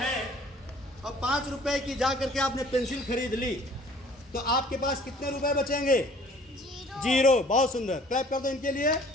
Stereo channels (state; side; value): normal; both; correlation 0.53